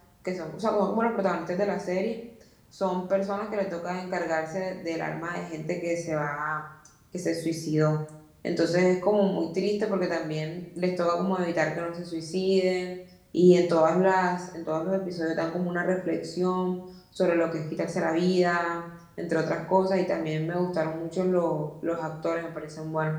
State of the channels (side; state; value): both; identical; correlation 1.00